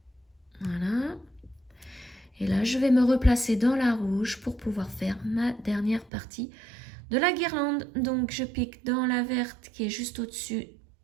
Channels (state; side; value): drops out; left; at 6.1 s